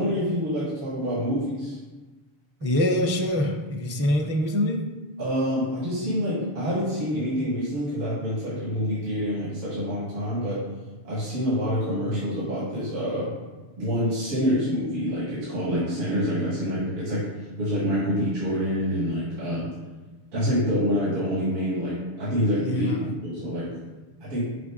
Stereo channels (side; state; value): left; late; 6.9 ms